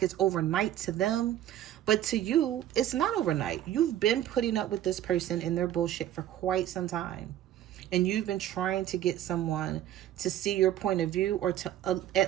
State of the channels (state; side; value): quieter; left; 12.1 dB